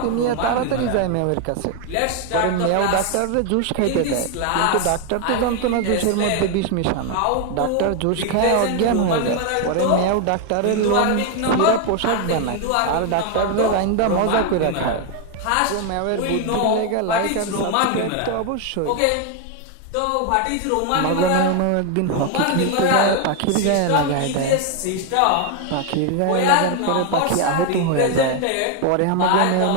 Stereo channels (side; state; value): both; different; correlation 0.01